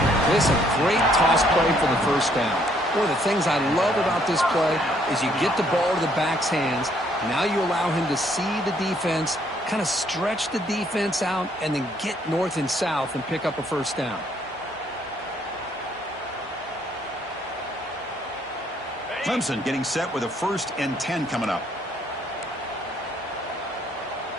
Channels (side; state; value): both; normal; correlation 0.67